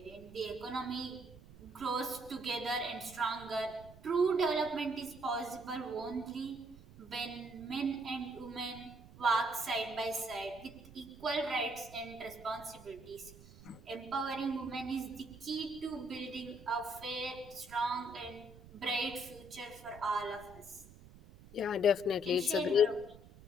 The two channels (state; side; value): noise; right; rumble, 19 dB below the sound